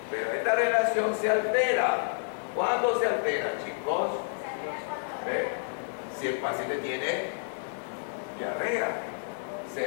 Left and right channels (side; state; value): right; silent; digital silence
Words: Pero esta relación se altera. ¿Cuándo se altera, chicos? Si el paciente tiene diarrea, se